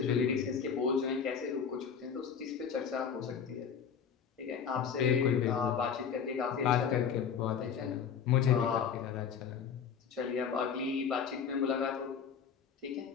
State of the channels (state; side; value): quieter; right; 7.0 dB